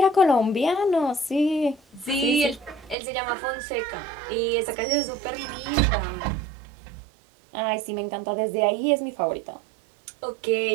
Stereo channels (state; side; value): drops out; left; at 3.0 s